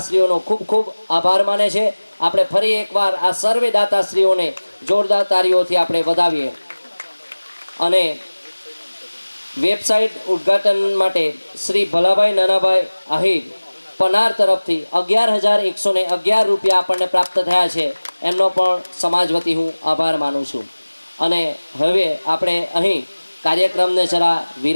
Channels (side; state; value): both; inverted; correlation -1.00